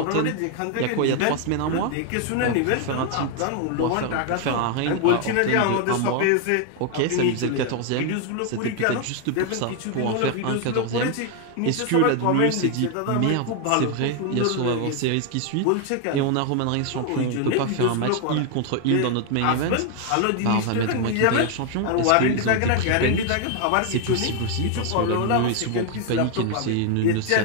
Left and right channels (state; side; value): different; both; correlation 0.00